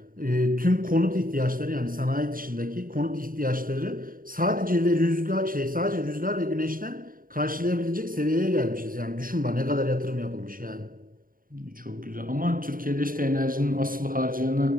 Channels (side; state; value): left; late; 0.41 ms